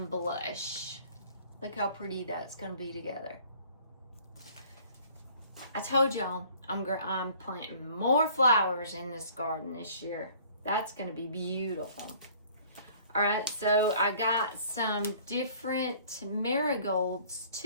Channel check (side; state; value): both; inverted; correlation -0.54